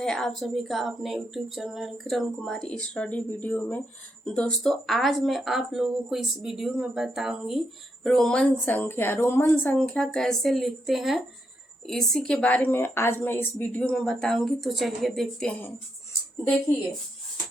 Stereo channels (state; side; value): normal; both; correlation 0.80